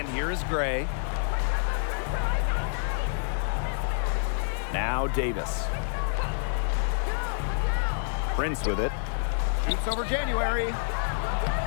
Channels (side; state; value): right; silent; digital silence